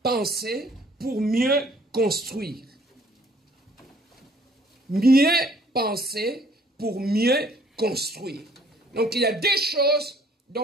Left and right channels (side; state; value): both; normal; correlation 0.59